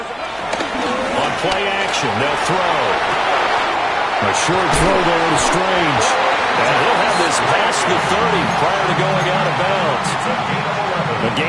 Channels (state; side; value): identical; both; correlation 1.00